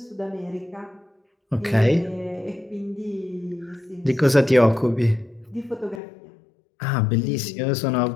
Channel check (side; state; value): right; drops out; at 6.0 s